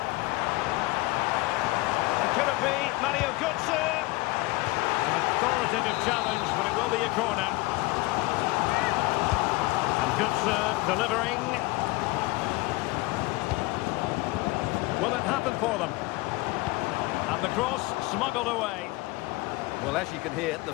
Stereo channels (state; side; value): quieter; right; 22.0 dB